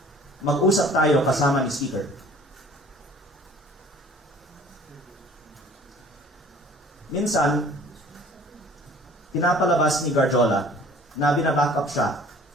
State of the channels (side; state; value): both; normal; correlation 0.50